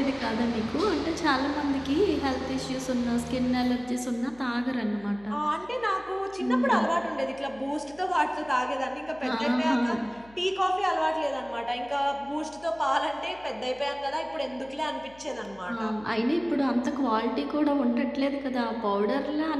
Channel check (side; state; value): left; noise; hum, 25 dB below the sound